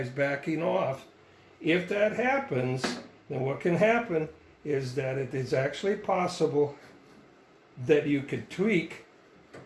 backing off. If that happens, then what can happen is that it is actually possible that you could tweak.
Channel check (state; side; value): identical; both; correlation 1.00